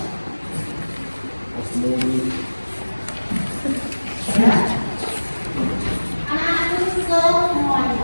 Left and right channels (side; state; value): both; inverted; correlation -1.00